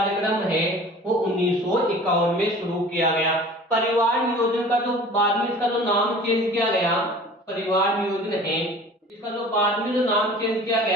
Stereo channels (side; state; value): both; normal; correlation 0.44